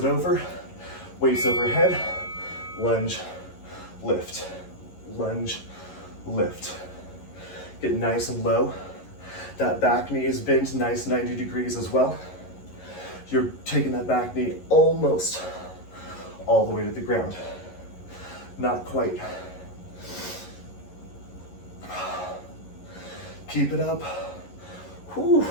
over, weights overhead, lunge, lift, lunge, lift. Get nice and low. That back knee is bent nice 90 degrees as well. You're taking that back knee almost all the way to the ground. Not quite. Keep it up. Whew.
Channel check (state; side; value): late; right; 11 ms